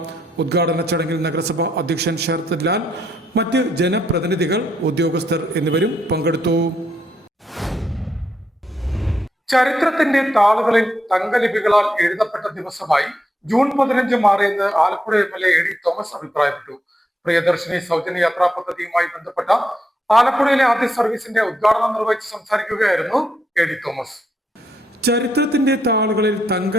ഉദ്ഘാടന ചടങ്ങിൽ നഗരസഭ അധ്യക്ഷൻ ശരത് ലാൽ, മറ്റ് ജനപ്രതിനിധികൾ, ഉദ്യോഗസ്ഥർ എന്നിവരും പങ്കെടുത്തു. ചരിത്രത്തിന്റെ താളുകളിൽ തങ്കലിപികളാൽ എഴുതപ്പെട്ട ദിവസമായി ജൂൺ 15 മാറിയെന്ന് ആലപ്പുഴ MLA AD തോമസ് അഭിപ്രായപ്പെട്ടു. പ്രിയദർശിനി സൗജന്യ യാത്രാ പദ്ധതിയുമായി ബന്ധപ്പെട്ട ആലപ്പുഴയിലെ ആദ്യ സർവീസിന്റെ ഉദ്ഘാടനം നിർവഹിച്ച് സംസാരിക്കുകയായിരുന്നു AD തോമസ്. ചരിത്രത്തിന്റെ താളുകളിൽ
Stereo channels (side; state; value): both; normal; correlation 0.78